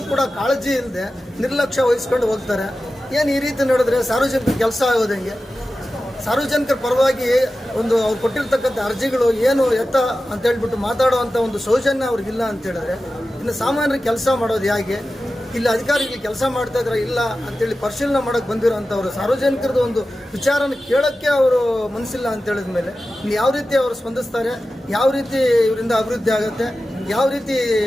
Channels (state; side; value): normal; both; correlation 0.94